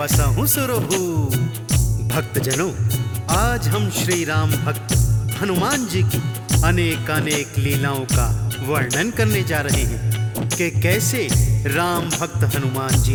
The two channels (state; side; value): identical; both; correlation 1.00